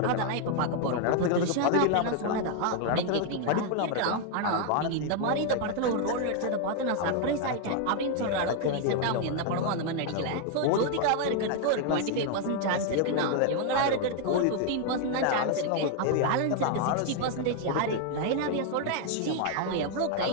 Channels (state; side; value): different; both; correlation 0.00